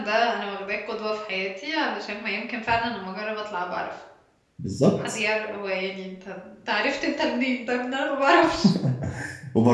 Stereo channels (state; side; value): identical; both; correlation 1.00